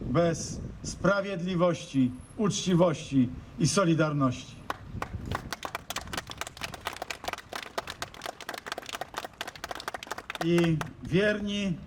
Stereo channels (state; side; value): identical; both; correlation 1.00